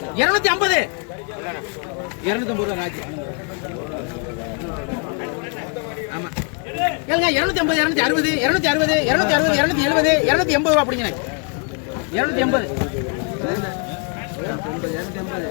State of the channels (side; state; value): right; quieter; 37.2 dB